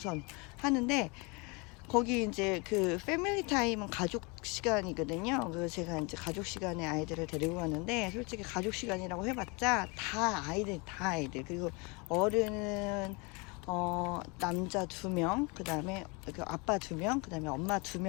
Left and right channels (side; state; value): right; quieter; 29.2 dB